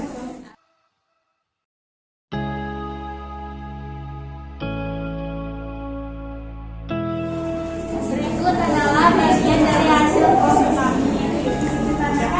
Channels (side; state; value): both; identical; correlation 1.00